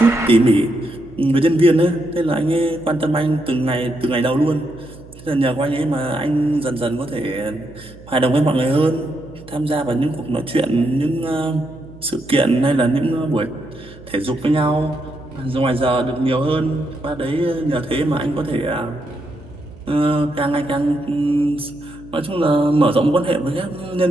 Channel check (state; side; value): noise; right; hum, 20 dB below the sound